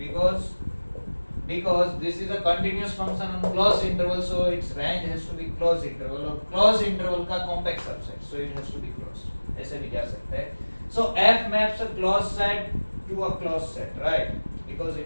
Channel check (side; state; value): both; inverted; correlation -1.00